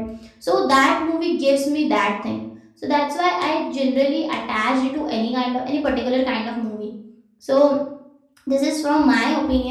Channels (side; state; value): both; identical; correlation 1.00